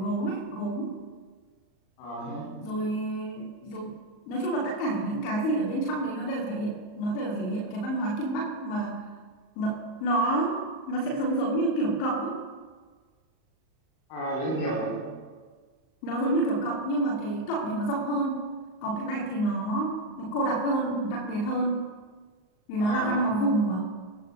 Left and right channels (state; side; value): late; right; 38 ms